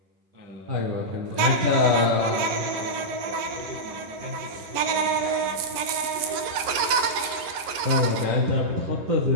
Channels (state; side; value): late; left; 11 ms